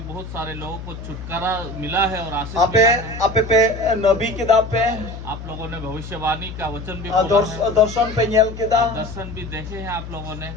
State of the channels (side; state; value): left; noise; hum, 10 dB below the sound